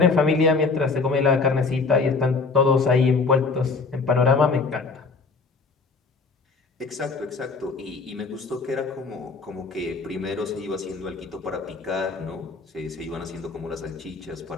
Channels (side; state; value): right; quieter; 4.3 dB